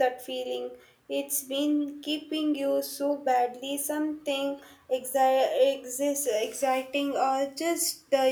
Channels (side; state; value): both; identical; correlation 1.00